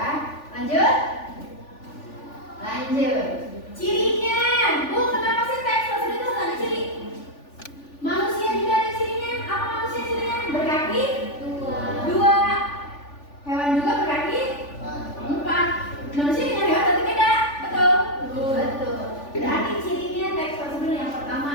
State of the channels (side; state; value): right; late; 3.4 ms